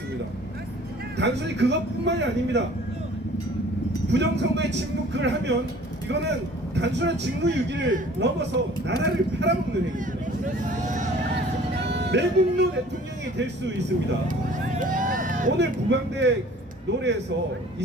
단순히 그것뿐만이 아닙니다. 부정선거에 침묵을 하면 이거는 단순한 직무유기를 넘어서 나라를 팔아먹는 행위입니다. 매국노 대통령이 될 수 있습니다. 오늘 부방대 노래에서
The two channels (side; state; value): both; normal; correlation 0.50